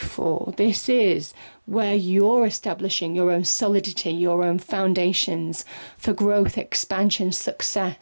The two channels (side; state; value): both; inverted; correlation -1.00